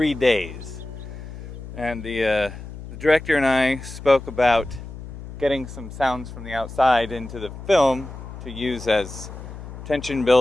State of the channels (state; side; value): noise; left; hum, 12 dB below the sound